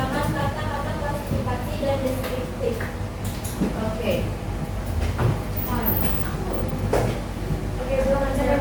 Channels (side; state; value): both; identical; correlation 1.00